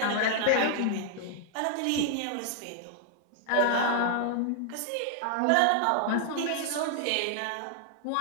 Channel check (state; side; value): different; both; correlation 0.00